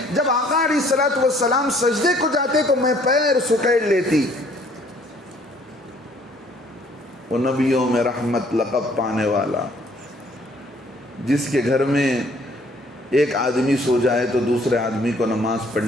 جب آقا علیہ الصلوۃ والسلام سجدے کو جاتے تو میں پیر سکیڑ لیتی۔ وہ نبیوں میں رحمت لقب پانے والا، جس کے گھر میں ایک آدمی سو جائے تو دوسرے آدمی کو نماز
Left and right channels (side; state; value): both; normal; correlation 0.60